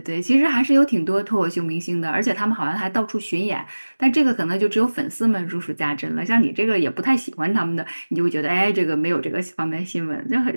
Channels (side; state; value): both; inverted; correlation -1.00